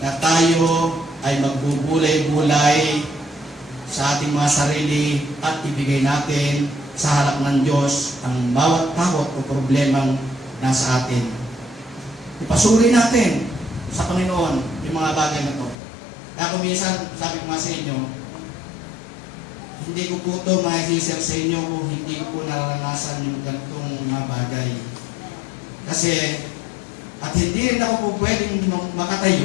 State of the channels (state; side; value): drops out; right; at 15.8 s